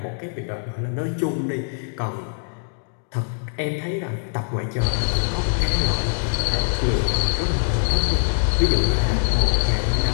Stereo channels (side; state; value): right; silent; 64 dB below the other